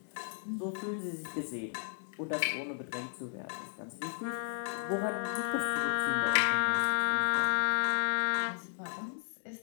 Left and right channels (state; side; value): silent; right; 55 dB below the other